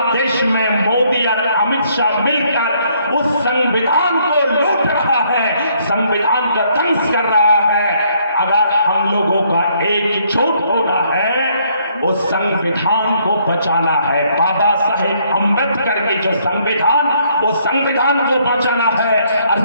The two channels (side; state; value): both; inverted; correlation -0.68